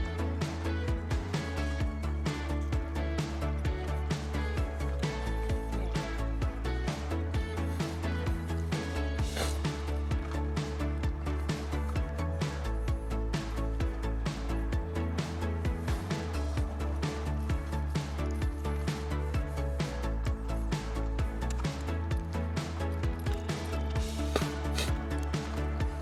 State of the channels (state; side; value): identical; both; correlation 1.00